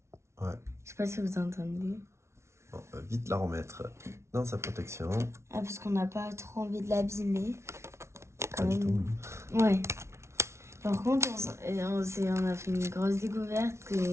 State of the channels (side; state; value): left; late; 0.13 ms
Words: Ouais. Je sais pas si vous entendez. Bon, on va vite la remettre dans sa protection. Ah, parce qu'on n'a pas trop envie de l'abîmer. Pas Quand du même. tout. Ouais. Par contre, on a fait une grosse découverte